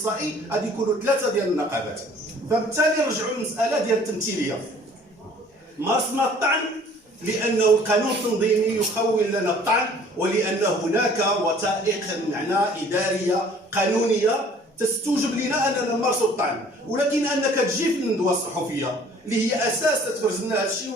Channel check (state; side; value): normal; both; correlation 0.53